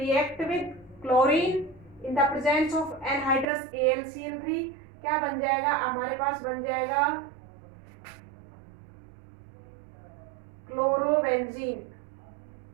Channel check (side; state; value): left; drops out; at 3.5 s